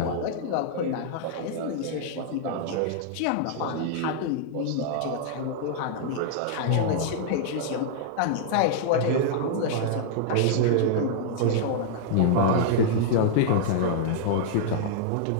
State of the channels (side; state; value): both; different; correlation -0.01